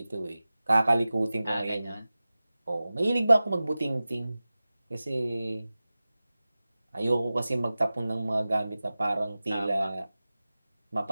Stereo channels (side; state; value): both; inverted; correlation -0.96